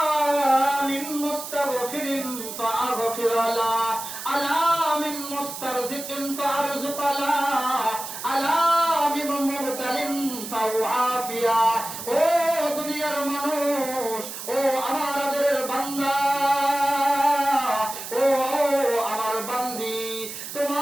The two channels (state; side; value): noise; right; hiss, 9 dB below the sound